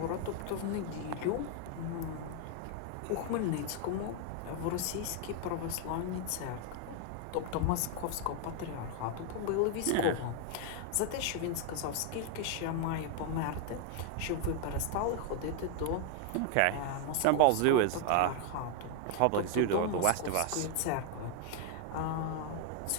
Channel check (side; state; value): both; different; correlation 0.00